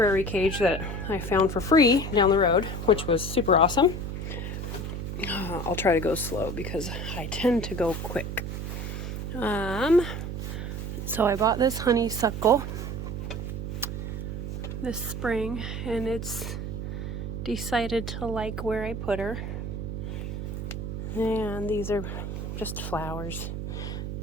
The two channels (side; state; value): right; noise; hum, 5 dB below the sound